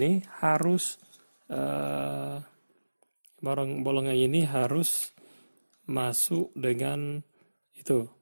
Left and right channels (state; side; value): inverted; both; correlation -1.00